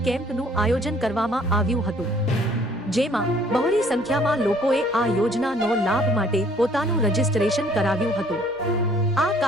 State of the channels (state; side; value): normal; both; correlation 0.59